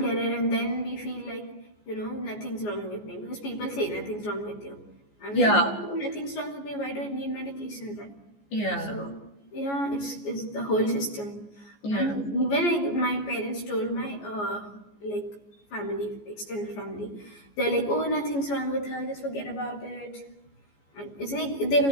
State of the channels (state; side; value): late; right; 14 ms